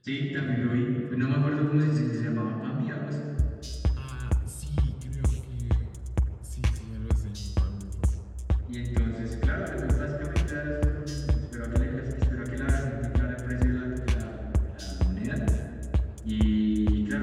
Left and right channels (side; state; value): both; identical; correlation 1.00